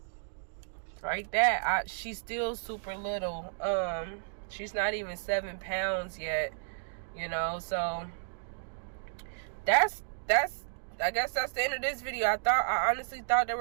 Like that. She's still super little. She's not even 7 pounds yet. You know, so that's I guess that's the end of this video. I honestly thought they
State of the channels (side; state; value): left; silent; digital silence